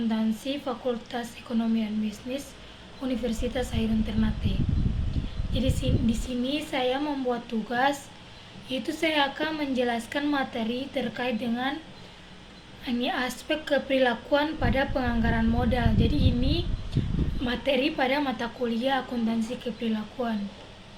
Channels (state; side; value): identical; both; correlation 1.00